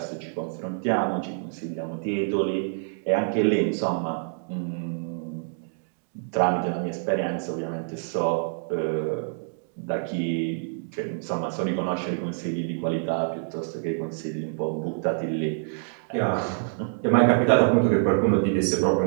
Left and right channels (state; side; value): silent; left; digital silence